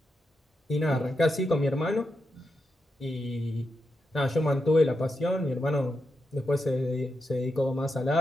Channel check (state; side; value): normal; both; correlation 0.86